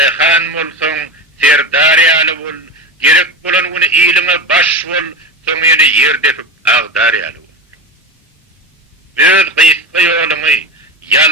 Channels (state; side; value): normal; both; correlation 0.23